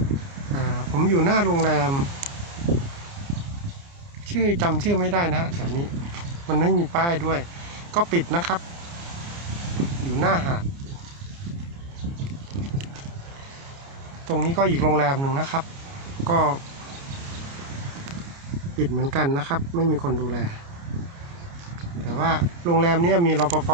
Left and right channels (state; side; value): late; left; 29 ms